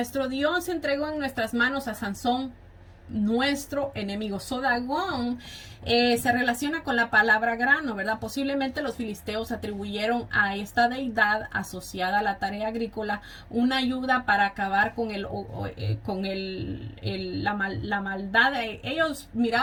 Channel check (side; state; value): both; identical; correlation 1.00